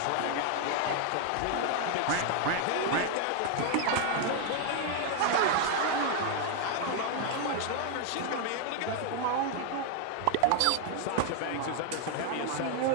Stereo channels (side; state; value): both; different; correlation 0.00